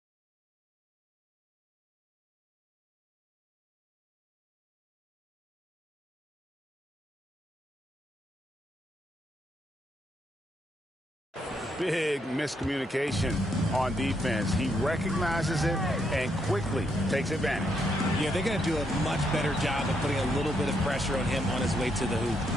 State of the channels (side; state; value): both; normal; correlation 0.77